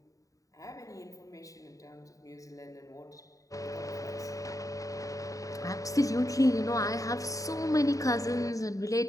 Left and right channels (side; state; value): right; late; 0.16 ms